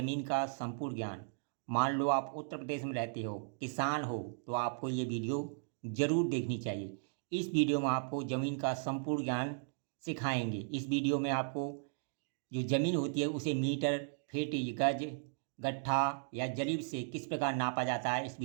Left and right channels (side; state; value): left; silent; digital silence